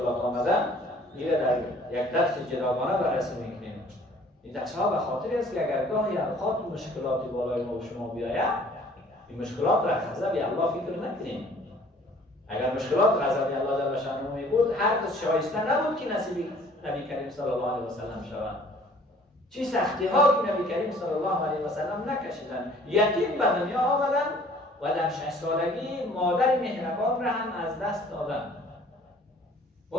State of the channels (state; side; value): normal; both; correlation 0.54